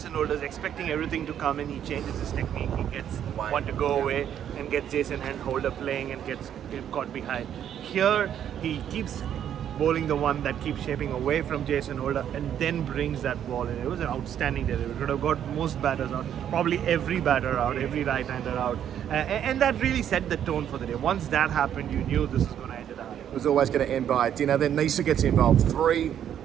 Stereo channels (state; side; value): quieter; left; 9.8 dB